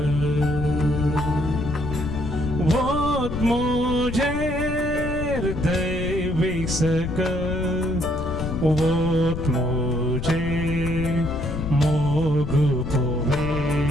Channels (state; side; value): noise; left; rumble, 6 dB below the sound